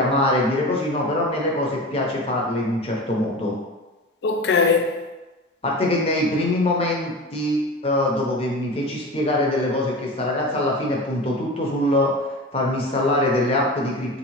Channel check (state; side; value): normal; both; correlation 0.31